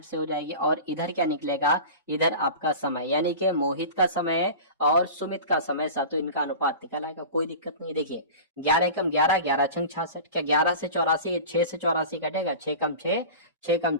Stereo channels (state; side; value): inverted; both; correlation -0.34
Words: से हो जाएगी। और इधर क्या निकलेगा, इधर आपका समय, यानी कि मोहित का समय और सुमित का समय साथियों, इनका अनुपात निकल आएगा, कोई दिक्कत नहीं। देखिए 11 एकम 11, 11 छंग 66, क्या 11 से 84, 6 से 84 कटेगा, 6 कम 6, 6 कम